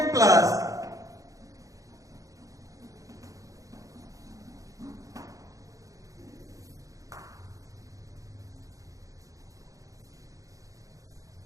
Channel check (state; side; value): late; left; 0.16 ms